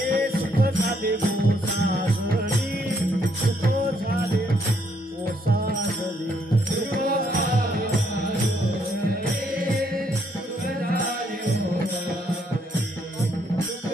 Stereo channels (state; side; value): normal; both; correlation 0.71